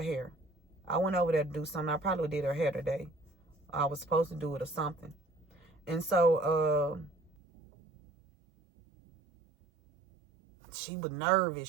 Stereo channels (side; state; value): left; drops out; at 7.3 s